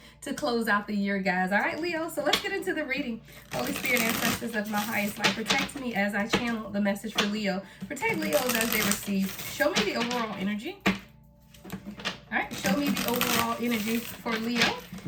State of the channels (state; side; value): identical; both; correlation 1.00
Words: to close out the year, guys. All right, Leo, so let's get into the reading. Holy Spirit, ancestors of my highest light, protect me as I channel the message for Leo. Protect Leos as they receive. Show me the overall energy. All right, show me the overall energy for Leo